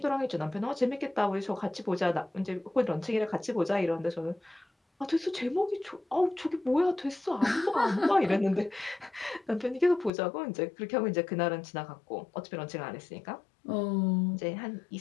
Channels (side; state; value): right; drops out; at 10.1 s